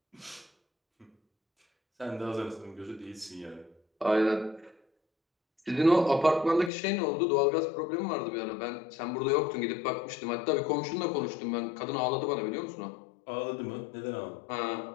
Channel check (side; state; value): right; drops out; at 6.7 s